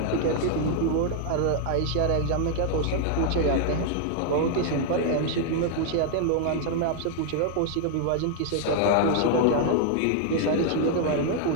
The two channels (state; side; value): different; both; correlation 0.00